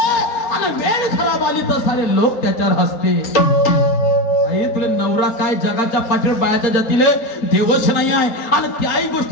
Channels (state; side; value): late; right; 4.3 ms